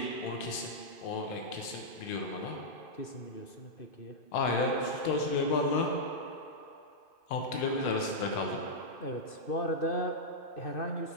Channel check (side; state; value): right; late; 2.5 ms